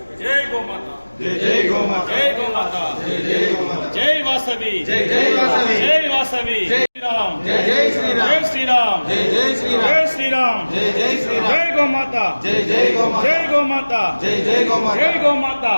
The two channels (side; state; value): both; inverted; correlation -1.00